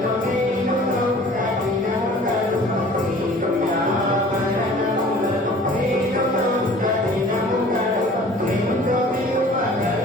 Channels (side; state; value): both; normal; correlation 0.48